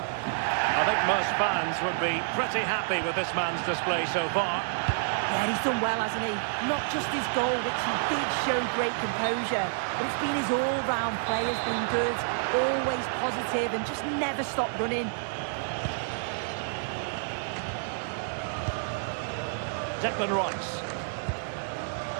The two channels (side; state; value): left; silent; digital silence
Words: I think most fans would be pretty happy with this man's display so far. Yeah, he's done well, hasn't he? Not just his goal, which he did show great composure, but it's been his all-round play has been good, always positive and just never stopped running. Declan Rice.